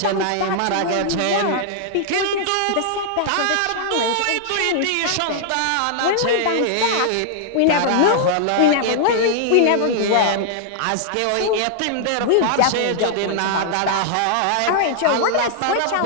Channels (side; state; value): both; different; correlation -0.01